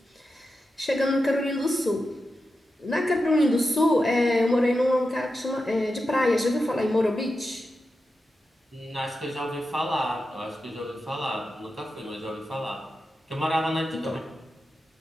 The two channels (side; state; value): both; normal; correlation 0.90